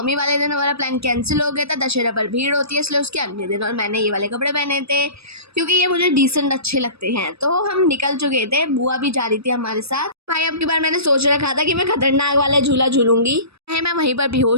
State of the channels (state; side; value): late; left; 0.78 ms